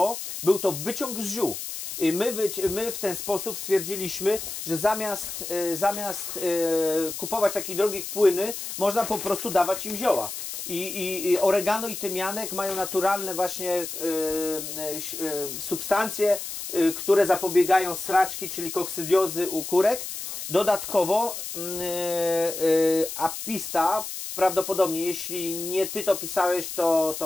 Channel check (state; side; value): noise; left; hiss, 7 dB below the sound